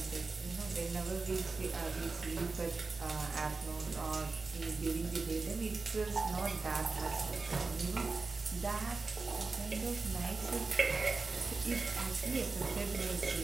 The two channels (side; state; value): left; quieter; 4.0 dB